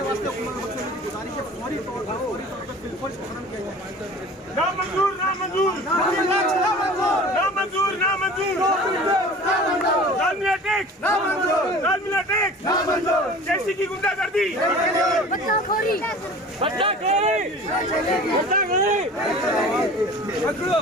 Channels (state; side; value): normal; both; correlation 0.41